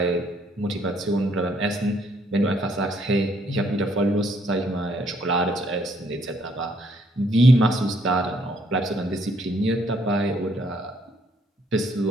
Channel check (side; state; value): both; normal; correlation 0.68